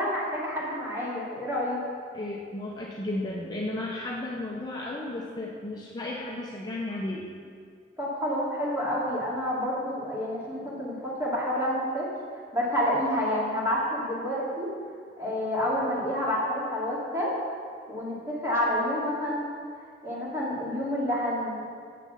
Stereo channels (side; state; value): both; normal; correlation 0.23